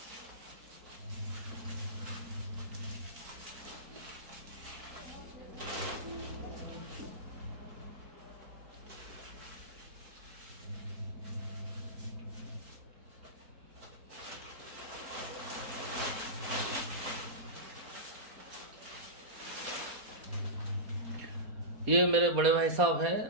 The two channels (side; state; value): left; late; 4.2 ms